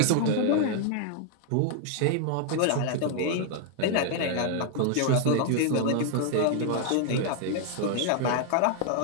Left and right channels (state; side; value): different; both; correlation 0.00